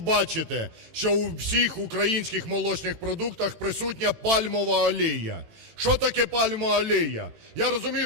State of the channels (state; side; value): late; left; 18 ms